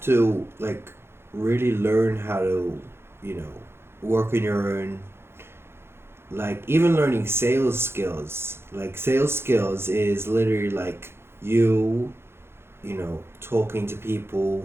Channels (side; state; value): left; late; 0.12 ms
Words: to like really learn how to you know work on your own. Like even learning sales skills. Like sales skills is literally like you talking to